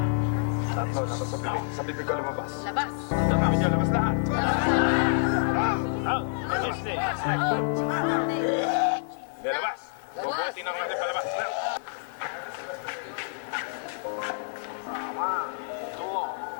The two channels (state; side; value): silent; right; digital silence